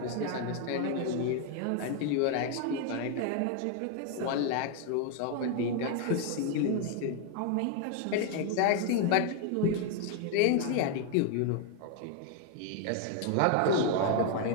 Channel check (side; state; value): both; different; correlation 0.01